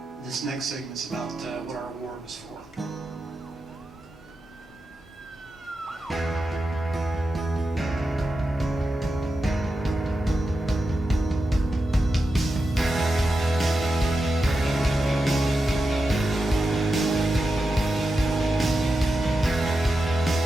This next segment's about what our award was for.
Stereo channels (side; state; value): both; normal; correlation 0.89